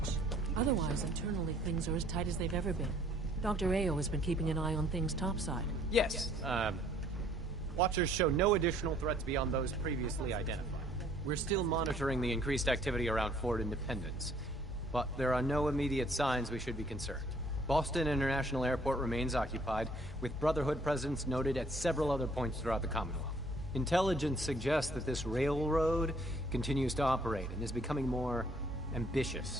Otherwise, internally, things are as tight as they've ever been. Dr. Ayo has been keeping an eye on things topside. Yes, Watchers show no additional threats beyond those previously identified. We're still monitoring the increased activity around Fort Independence, but there are no immediate signs we should be concerned. Boston International Airport remains occupied, with Brotherhood presence noted at several other points throughout the Commonwealth. Intelligence suggests that this railroad continues to operate and is becoming more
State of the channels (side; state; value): both; normal; correlation 0.60